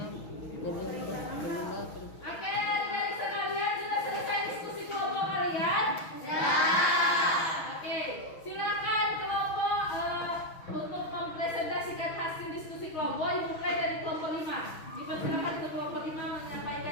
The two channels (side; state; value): right; late; 6.2 ms